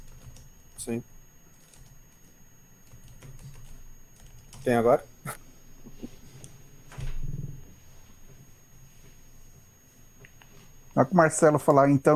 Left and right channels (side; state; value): both; identical; correlation 1.00